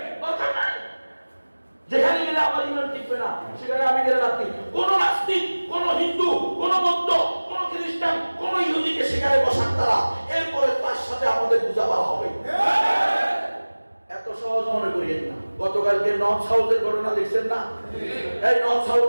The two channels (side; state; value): both; inverted; correlation -1.00